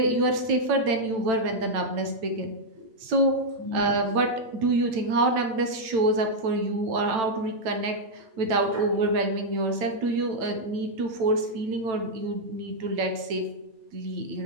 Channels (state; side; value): late; left; 9.0 ms